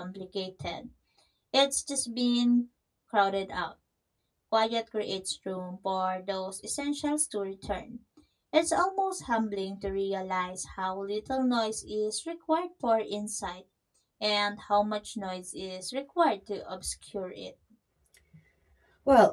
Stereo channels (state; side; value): identical; both; correlation 1.00